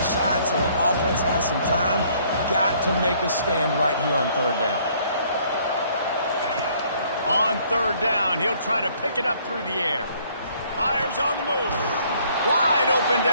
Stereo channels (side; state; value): both; inverted; correlation -0.62